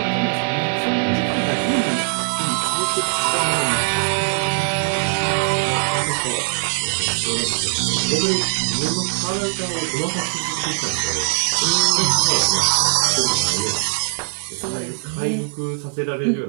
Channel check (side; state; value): left; silent; digital silence